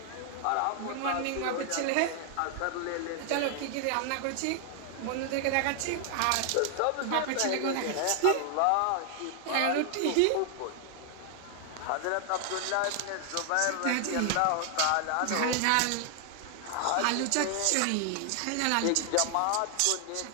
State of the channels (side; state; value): both; different; correlation 0.00